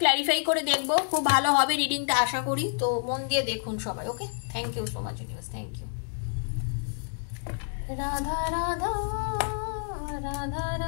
ক্ল্যারিফাই করে দেখবো, খুব ভালো হবে রিডিংটা আশা করি, তো মন দিয়ে দেখুন সবাই। Okay, thank you so much universe, thank you. Radha Radha Radha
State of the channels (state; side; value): silent; right; digital silence